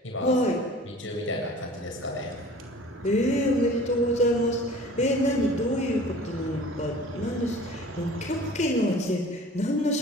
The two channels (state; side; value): normal; both; correlation 0.45